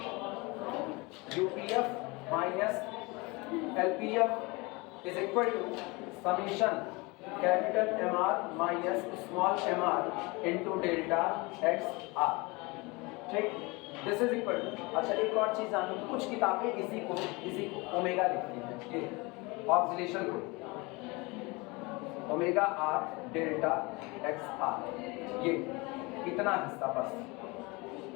UPF minus LPF is equal to summation capital MR minus small mr into delta XR, ठीक, दिस इज इक्वल टू। अच्छा एक और चीज जानो, कुछ किताबें इसी को ओमेगा लिखती हैं, ये ऑक्सीलेशन को ओमेगा R डेल्टा XR, ये इतना हिस्सा बस,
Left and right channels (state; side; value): quieter; right; 25.6 dB